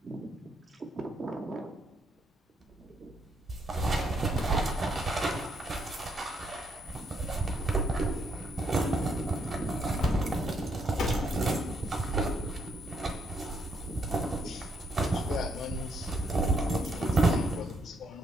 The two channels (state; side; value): normal; both; correlation 0.74